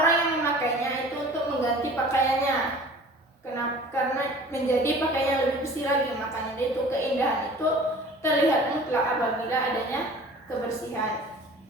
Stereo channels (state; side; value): normal; both; correlation 0.45